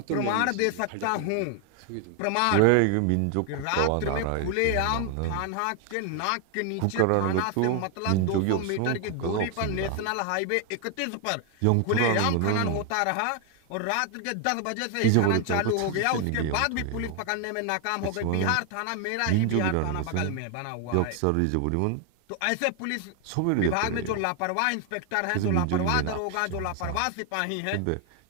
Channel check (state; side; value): different; both; correlation 0.00